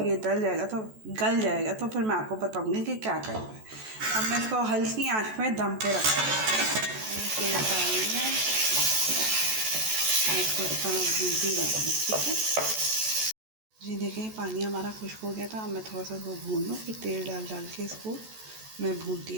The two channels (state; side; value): late; left; 14 ms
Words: ये गल जाएगा तो फिर मैं आपको बताऊँगी कि क्या करना है। अब मैं इसको हल्की आंच में दम पे रखूँगी। तेल डालेंगे, इसको इस तरह भूनती रहूँगी। ठीक है जी। देखिए पानी हमारा खुश्क हो गया था। अब मैं थोड़ा सा इसको भून लूँ, फिर तेल डाल के इसको मैं